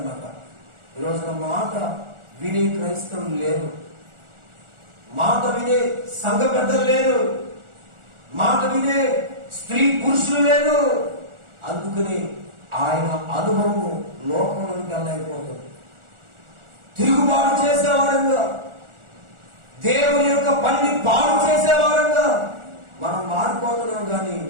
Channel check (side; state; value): left; late; 1.4 ms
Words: ఈ రోజున మాట వినే క్రైస్తవులు లేరు, మాట వినే సంఘ పెద్దలు లేరు, మాట వినే స్త్రీ పురుషులు లేరు. అందుకని ఆయన అనుభవము లోకంలోకి వెళ్ళైపోతుంది. తిరుగుబాటు చేసేవారంగా, దేవుని యొక్క పనిని పాడు చేసేవారంగా మనం మారిపోతున్నాం. కానీ